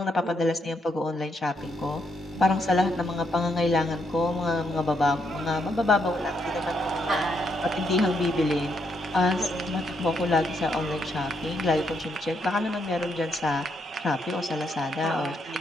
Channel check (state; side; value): normal; both; correlation 0.77